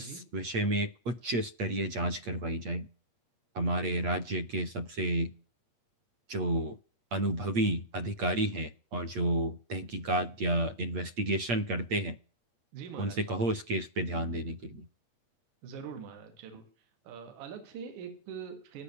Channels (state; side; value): late; left; 8.5 ms